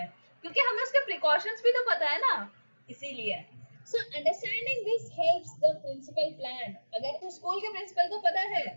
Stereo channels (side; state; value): both; inverted; correlation -1.00